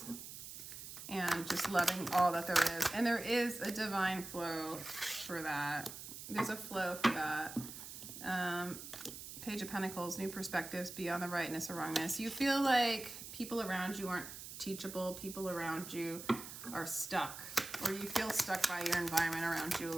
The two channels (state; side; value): noise; right; hiss, 11 dB below the sound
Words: and just loving all that there is. And there is a divine flow for that. There's a flow for that. Page of Pentacles, new perspectives beyond the rightness or wrongness. You feel like people around you aren't teachable. People around you are stuck, or you feel stuck by your environment around you a